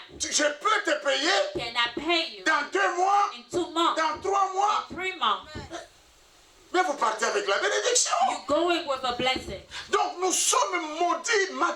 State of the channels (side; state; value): both; identical; correlation 1.00